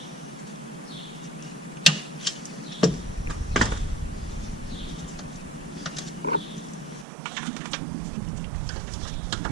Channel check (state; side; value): drops out; left; at 7.1 s